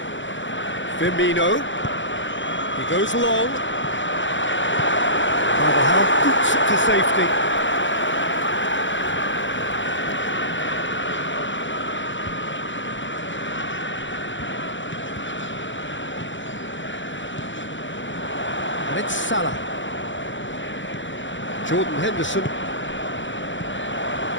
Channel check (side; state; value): right; late; 0.55 ms